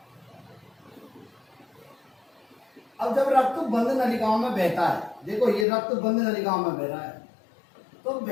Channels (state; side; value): drops out; right; at 5.7 s